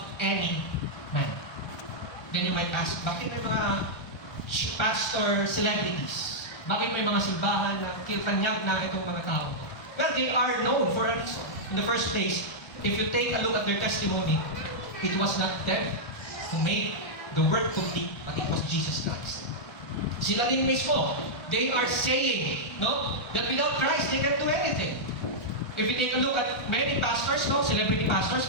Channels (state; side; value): late; right; 1.2 ms